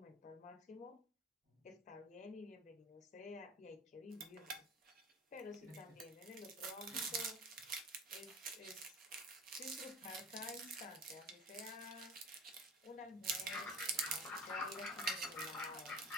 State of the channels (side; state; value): both; normal; correlation 0.36